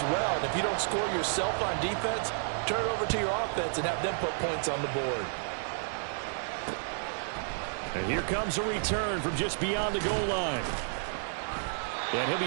well. And if you don't score yourself on defense, turn it over to your offense and have them put points on the board. And here comes a return from just beyond the goal line. And he'll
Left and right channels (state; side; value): silent; left; digital silence